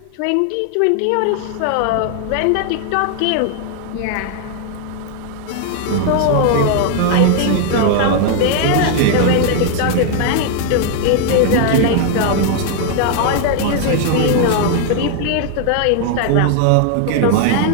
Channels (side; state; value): both; different; correlation 0.00